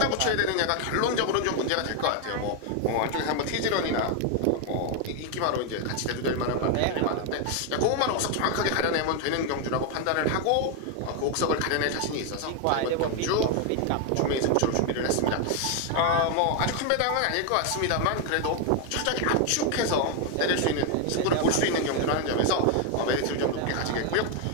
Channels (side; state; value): both; different; correlation 0.01